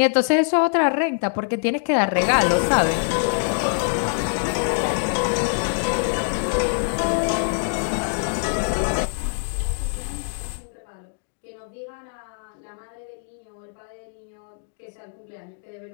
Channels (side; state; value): right; silent; digital silence